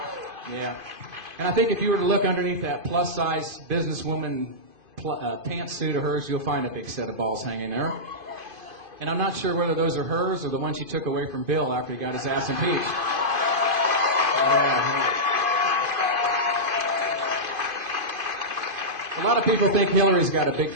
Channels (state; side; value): late; left; 2.5 ms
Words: Yeah. And I think if you were to look underneath that plus-size businesswoman pantsuit of hers, you'll find a big set of balls hanging there. And I'm not sure whether those are hers or the ones she took away from Bill after he got his ass impeached. Yeah. A lot of people think Hillary's got a big